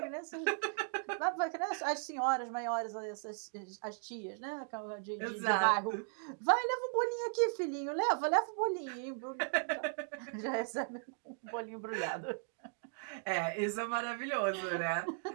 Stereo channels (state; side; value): silent; left; digital silence